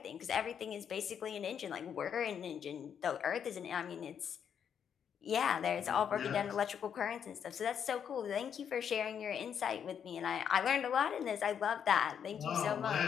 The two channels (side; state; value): right; quieter; 8.0 dB